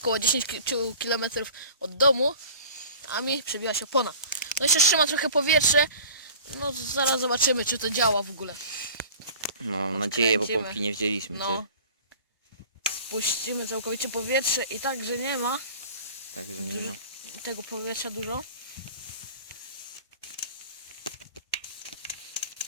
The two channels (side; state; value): both; inverted; correlation -0.42